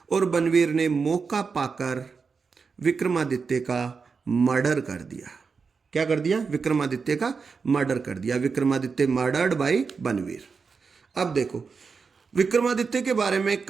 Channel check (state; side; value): quieter; left; 5.2 dB